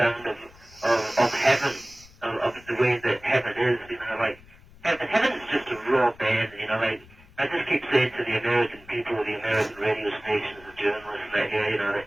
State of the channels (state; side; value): noise; left; rumble, 24 dB below the sound